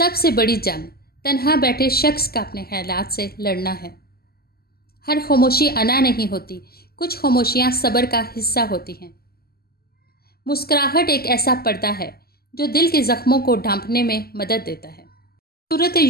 سے بڑی جنگ تنہا بیٹھے شخص کا اپنے خیالات سے لڑنا ہے۔ ہر خاموشی انا نہیں ہوتی، کچھ خاموشیاں صبر کا حصہ ہوتی ہیں۔ مسکراہٹ ایک ایسا پردہ ہے جو دل کے زخموں کو ڈھانپنے میں مدد دیتا ہے۔ سورۃ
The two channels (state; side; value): late; right; 0.45 ms